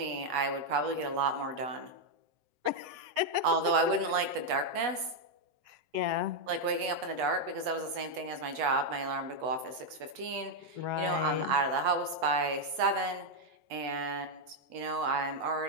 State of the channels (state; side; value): late; left; 8.2 ms